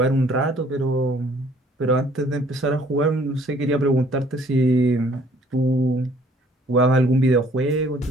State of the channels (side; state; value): both; normal; correlation 0.59